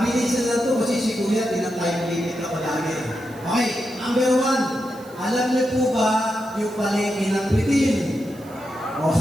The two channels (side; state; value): right; noise; hiss, 24 dB below the sound